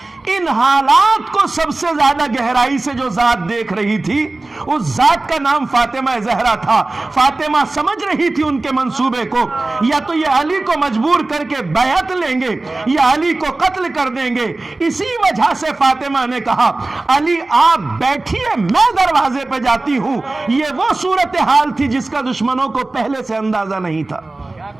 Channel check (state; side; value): quieter; left; 3.1 dB